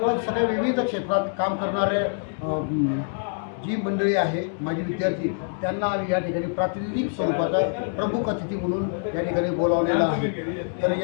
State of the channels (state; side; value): silent; right; 62 dB below the other